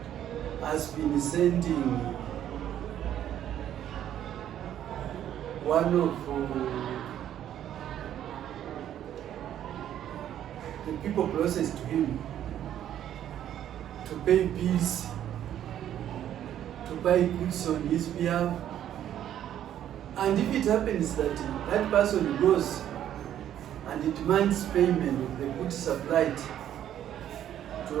has been sending one of the people closest to him to pay bills, to buy goods on his behalf, and if it happens that that person goes and demands payment of the goods supplied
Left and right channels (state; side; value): quieter; left; 10.9 dB